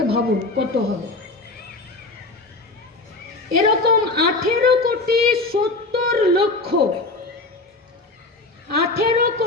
ভাবুন কত হবে। এরকম 18,70,00,000,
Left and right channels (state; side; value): quieter; right; 3.2 dB